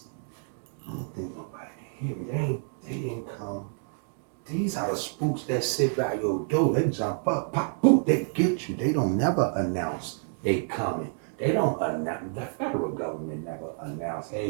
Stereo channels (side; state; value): left; silent; 59 dB below the other